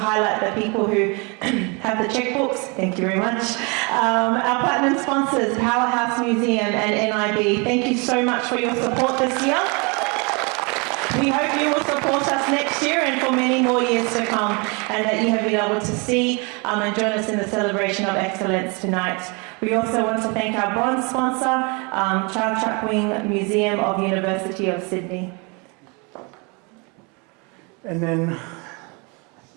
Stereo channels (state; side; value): quieter; left; 30.9 dB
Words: the people who have the checkbooks. Thank you very much. Our platinum sponsors, Powerhouse Museum and NIB, thank you so much for your support this year. We hope you will support us next year and for many more years to come, and that you have been able to see and join us in the celebration of excellence tonight. We also want to thank our bronze sponsor, Child Chuckwing Museum of University of Sydney. And then